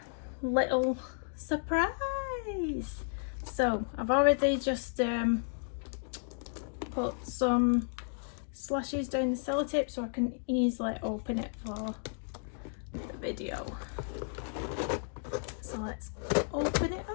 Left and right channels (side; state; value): right; silent; digital silence